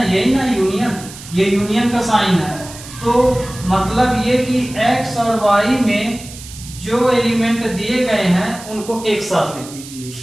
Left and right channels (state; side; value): noise; right; hiss, 15 dB below the sound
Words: यही ना यूनियन, ये यूनियन का साइन है। तो मतलब ये कि x और y में जो एलिमेंट दिए गए हैं उनको एक साथ लिख दीजिए।